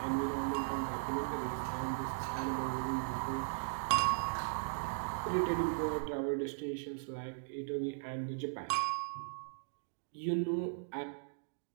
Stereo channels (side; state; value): left; silent; digital silence